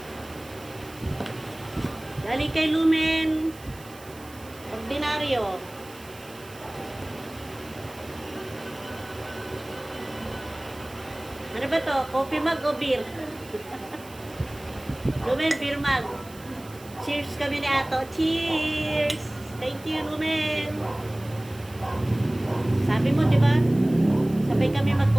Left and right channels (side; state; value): right; noise; hiss, 21 dB below the sound